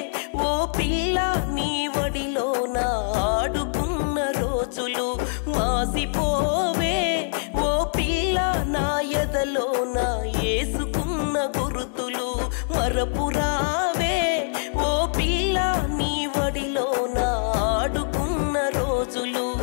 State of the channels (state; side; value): silent; right; digital silence